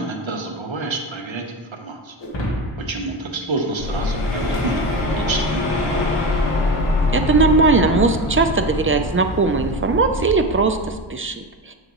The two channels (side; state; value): both; normal; correlation 0.21